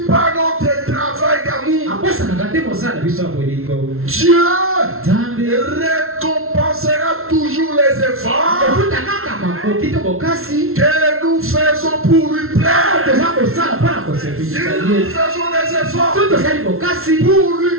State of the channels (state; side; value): late; left; 0.62 ms